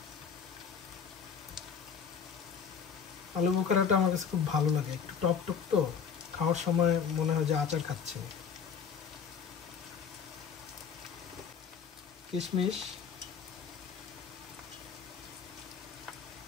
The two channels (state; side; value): quieter; right; 7.0 dB